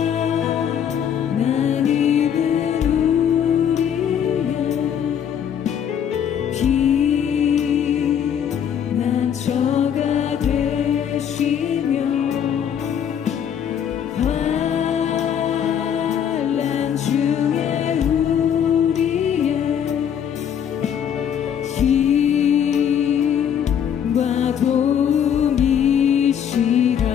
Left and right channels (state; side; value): quieter; right; 8.7 dB